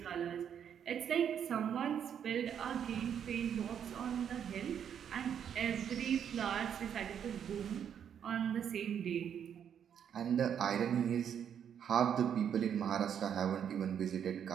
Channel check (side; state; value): left; quieter; 8.6 dB